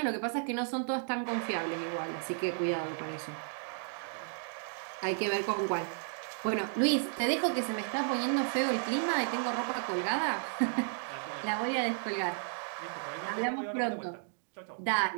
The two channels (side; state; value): left; silent; digital silence